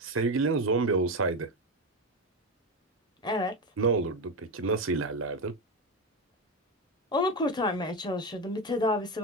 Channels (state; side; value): normal; both; correlation 0.14